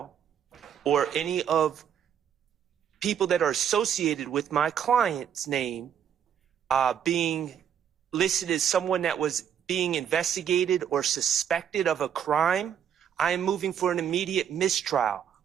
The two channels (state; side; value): quieter; left; 8.8 dB